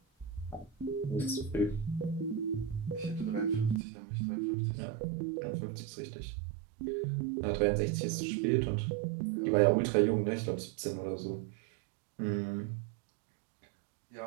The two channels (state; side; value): drops out; left; at 3.8 s